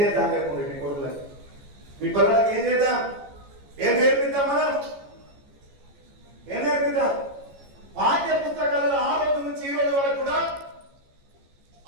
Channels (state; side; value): late; left; 14 ms